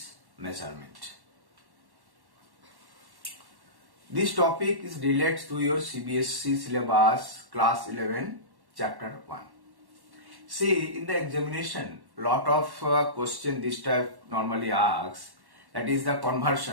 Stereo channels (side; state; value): left; late; 1.1 ms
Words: measurement. This topic is related to your CBSE syllabus class 11 chapter 1. See, in the examination, lot of question this type normally asks, that is the